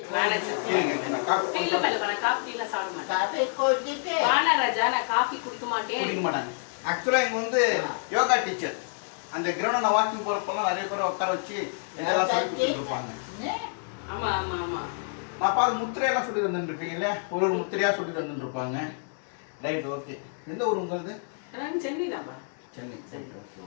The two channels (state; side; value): silent; right; 59 dB below the other